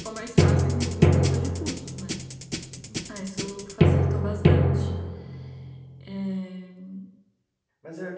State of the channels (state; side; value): identical; both; correlation 1.00